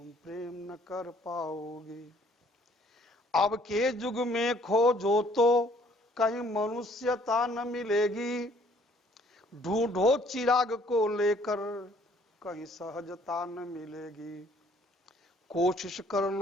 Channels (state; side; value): normal; both; correlation 0.60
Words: प्रेम न कर पाओगी। अब के युग में खोजो तो कहीं मनुष्यता न मिलेगी। ढूंढो चिराग को लेकर कहीं सहजता न मिलेगी। कोशिश कर